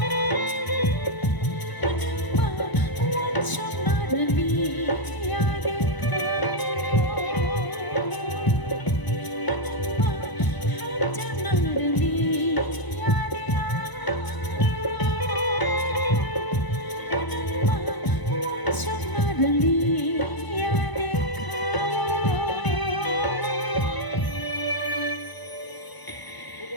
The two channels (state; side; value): late; right; 1.0 ms